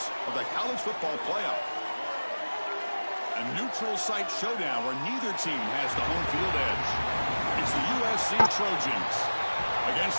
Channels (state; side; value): inverted; both; correlation -1.00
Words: of the college football playoff. A neutral site showdown where neither team has the home field edge. It's the USC Trojans against